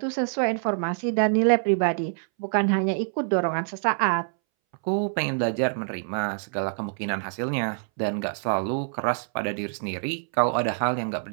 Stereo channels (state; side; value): silent; left; 61 dB below the other